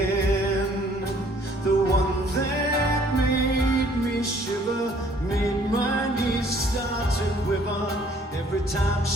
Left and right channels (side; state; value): both; normal; correlation 0.59